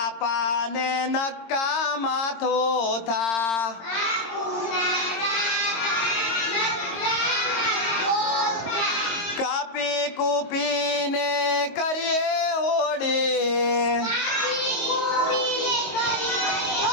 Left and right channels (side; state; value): right; late; 22 ms